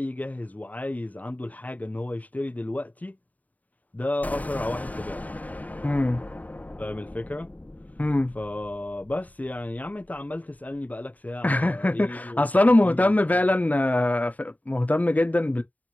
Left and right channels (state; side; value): late; right; 0.075 ms